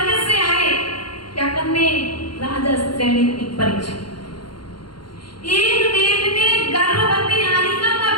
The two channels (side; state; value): right; late; 0.72 ms